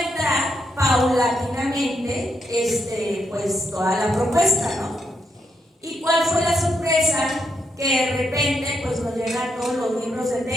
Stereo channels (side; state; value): both; normal; correlation 0.80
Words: paulatinamente pues toda la propuesta, ¿no? ¿Y cuál fue la sorpresa? Que de repente pues nos llegan todos los libros de